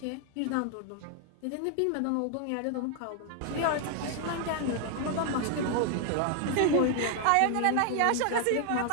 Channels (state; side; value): different; both; correlation 0.00